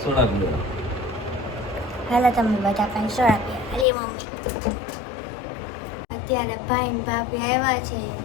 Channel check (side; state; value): right; drops out; at 3.9 s